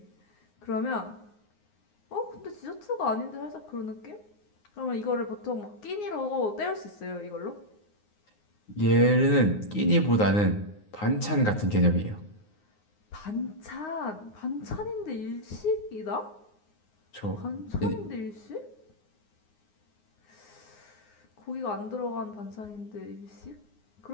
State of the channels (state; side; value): late; right; 9.6 ms